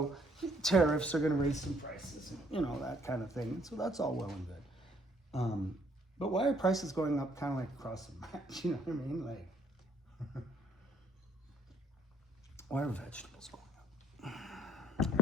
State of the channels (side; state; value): both; normal; correlation 0.66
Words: tariffs are going to raise some prices, that kind of thing. So that's all well and good. But why are prices going up kind of like across the match? You know what I mean? Like, why are vegetables going up?